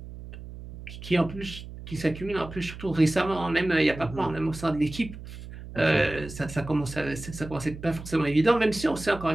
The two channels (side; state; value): right; noise; hum, 13 dB below the sound